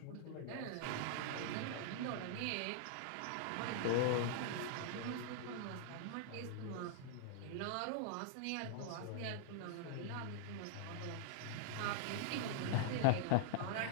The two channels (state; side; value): different; both; correlation -0.01